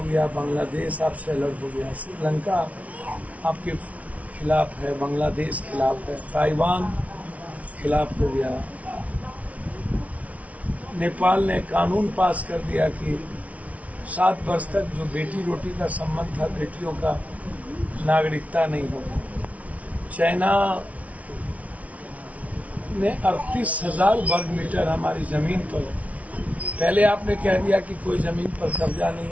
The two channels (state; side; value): late; left; 0.067 ms